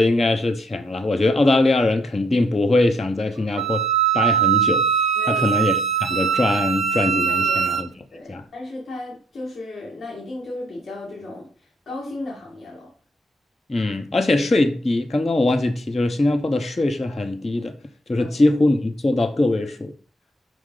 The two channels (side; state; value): both; normal; correlation 0.69